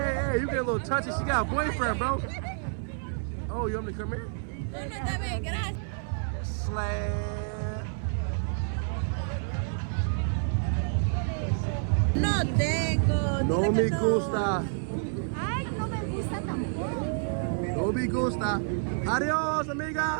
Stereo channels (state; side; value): silent; left; 59 dB below the other